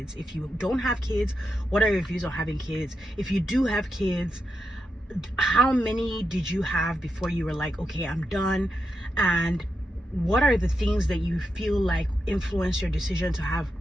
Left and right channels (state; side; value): normal; both; correlation 0.86